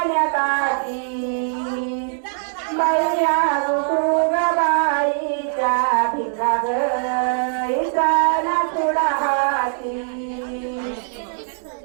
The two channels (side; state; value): left; silent; digital silence